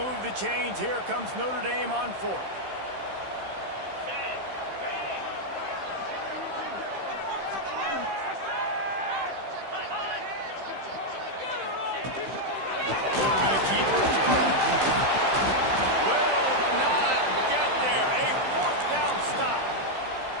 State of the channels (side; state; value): left; late; 15 ms